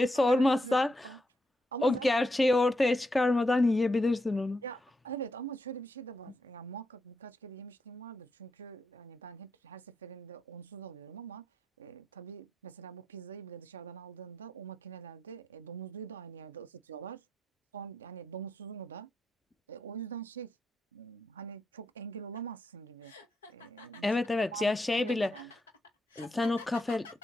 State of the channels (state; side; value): normal; both; correlation 0.84